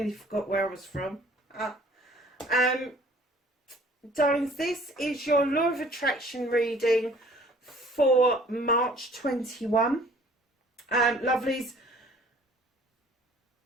forgot where I was from. Darlings, this is your Law of Attraction reading for March 21. Lovelies,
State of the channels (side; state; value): both; normal; correlation 0.53